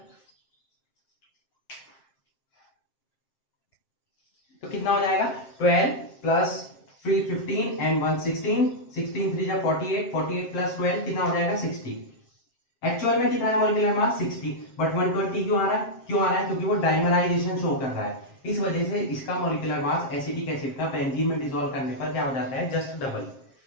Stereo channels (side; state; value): right; late; 7.5 ms